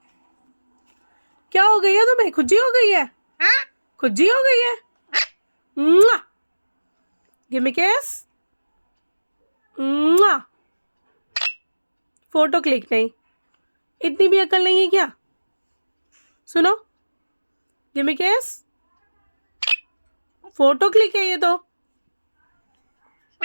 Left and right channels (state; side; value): inverted; both; correlation -1.00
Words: क्या हो गई है तुम्हें? खुजी हो गई है? खुजी हो गई है? गिव मी किस। फोटो क्लिक नहीं, इतनी भी अकल नहीं है क्या? सुनो, गिव मी किस। फोटो क्लिक है ये तो।